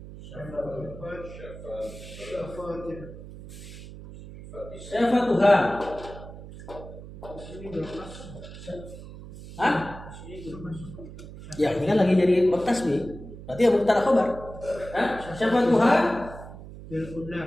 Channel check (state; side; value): noise; right; hum, 14 dB below the sound